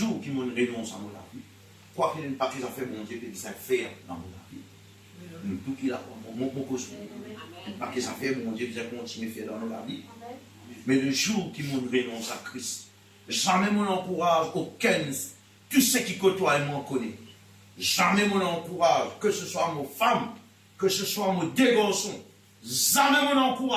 qui m'ont renonce à mon vie, quoi qu'il n'ait pas qu'ils ont fait mon Dieu, qu'ils savent faire dans mon vie. Tout qu'il a, mon cause, pas qu'ils ont fait mon Dieu, qu'ils ont continué à faire dans nos vie. Mais le jour qui m'ont renonce à Christ, jamais mon encourage aucun, tout ce qui côtoie et m'en connaît. Jamais mon encourage, que ce soit mon femme, que ce soit mon deux garçons, jamais mon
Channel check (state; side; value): identical; both; correlation 1.00